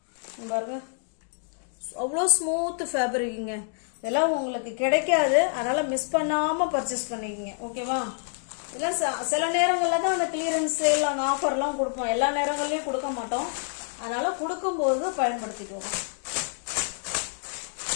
பாருங்க, அவ்வளோ ஸ்மூத் ஃபேப்ரிக்குங்க. இதெல்லாம் உங்களுக்கு கிடைக்காது, அதனால மிஸ் பண்ணாம பர்ச்சேஸ் பண்ணிக்கங்க. ஓகேவா? இதெல்லாம் சில நேரங்களில் தான் அந்த கிளியரன்ஸ் சேல், அந்த ஆஃபர்லாம் கொடுப்போம். எல்லா நேரங்கள்லையும் கொடுக்க மாட்டோம். அதனால கொடுக்கும்போது பயன்படுத்திக்கோங்க.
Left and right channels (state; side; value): silent; right; digital silence